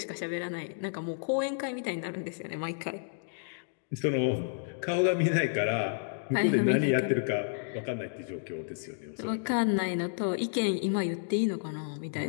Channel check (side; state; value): right; silent; digital silence